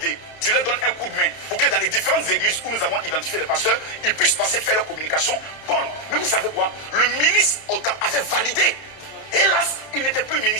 Tu leur donnes un coup de main pour que dans les différentes églises où nous avons identifié les pasteurs, ils puissent passer faire leur communication bonne. Mais vous savez quoi? Le ministre avait validé. Hélas, il n'était plus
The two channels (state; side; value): late; right; 31 ms